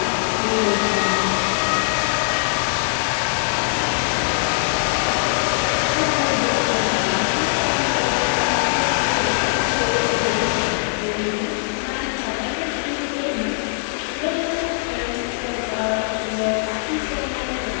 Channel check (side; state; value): right; silent; digital silence